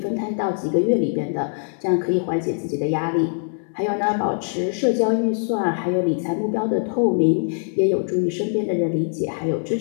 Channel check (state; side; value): silent; right; digital silence